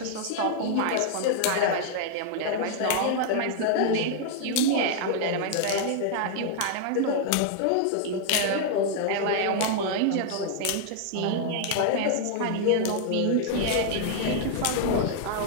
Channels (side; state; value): both; different; correlation -0.01